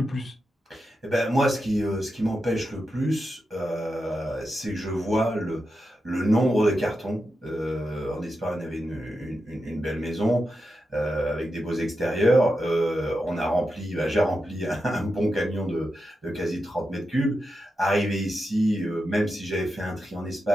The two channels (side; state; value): both; normal; correlation 0.88